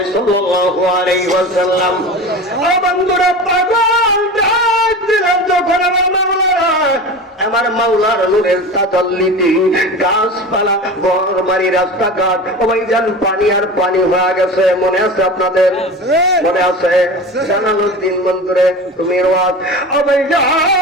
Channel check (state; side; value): normal; both; correlation 0.32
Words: সাল্লাল্লাহু আলাইহি ওয়াসাল্লাম বন্ধুরা পাগল ডাক দিলেন যখন আমার মাওলার নূরের তাজাল্লিতে গাছপালা ঘরবাড়ি রাস্তাঘাট ওইখান পানি আর পানি হয়ে গেছে মনে আছে আপনাদের মনে আছে জালালউদ্দিন মন্দিরে তুমি রাত